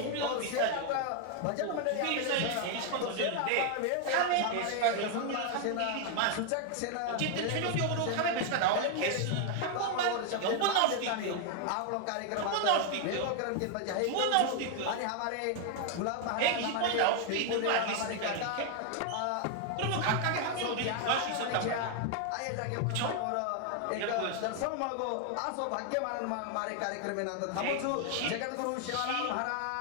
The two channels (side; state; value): both; different; correlation 0.00